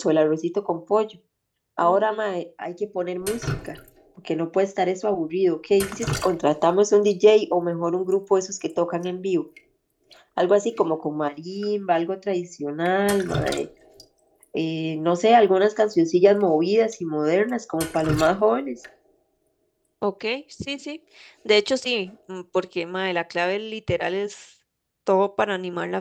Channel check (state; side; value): identical; both; correlation 1.00